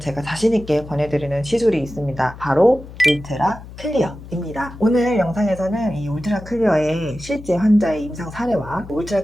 자신있게 권해드리는 시술이 있습니다. 바로 울트라 클리어입니다. 오늘 영상에서는 이 울트라 클리어의 실제 환자의 임상 사례와 울트라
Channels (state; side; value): noise; left; hum, 15 dB below the sound